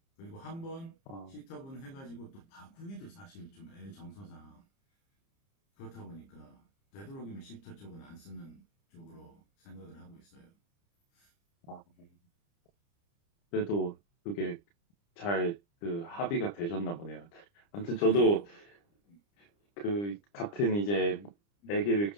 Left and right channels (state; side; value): late; right; 30 ms